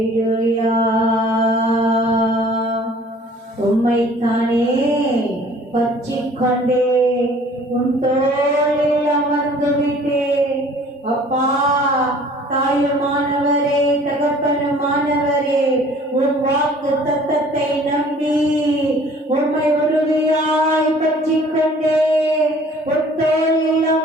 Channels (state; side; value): normal; both; correlation 0.52